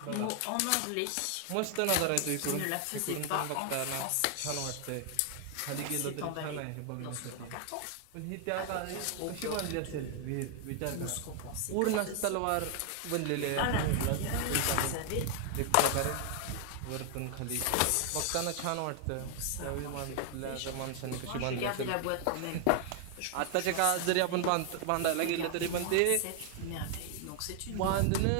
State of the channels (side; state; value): both; different; correlation 0.00